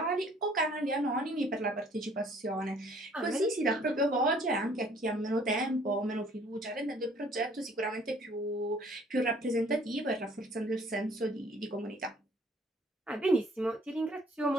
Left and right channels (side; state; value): both; normal; correlation 0.58